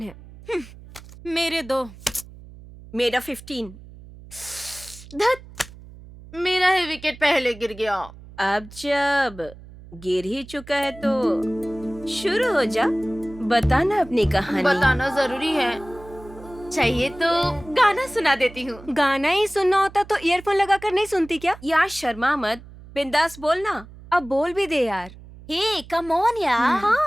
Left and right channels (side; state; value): right; noise; hum, 19 dB below the sound